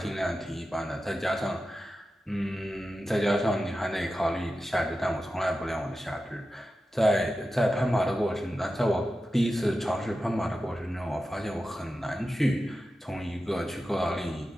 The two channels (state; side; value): normal; both; correlation 0.92